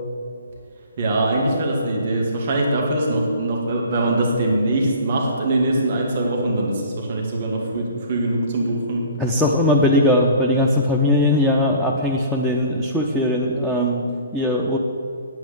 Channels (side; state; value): both; inverted; correlation -0.43